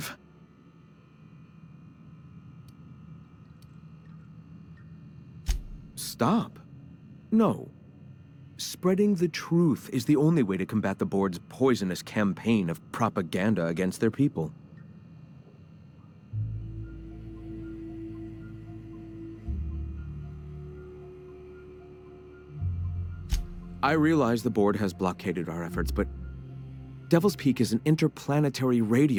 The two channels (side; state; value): both; identical; correlation 1.00